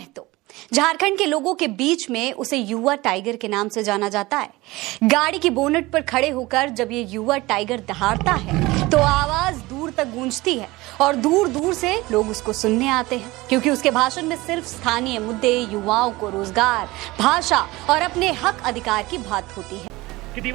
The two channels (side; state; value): left; quieter; 20.5 dB